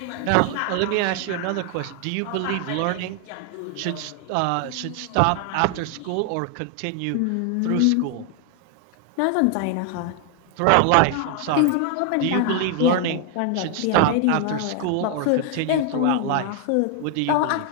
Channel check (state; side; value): different; both; correlation 0.00